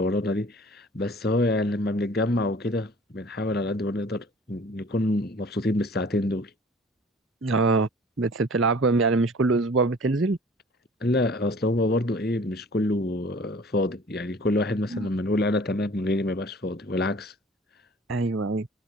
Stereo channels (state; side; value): normal; both; correlation 0.48